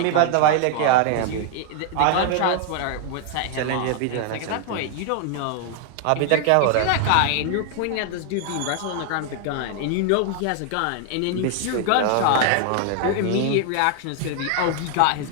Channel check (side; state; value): both; different; correlation 0.00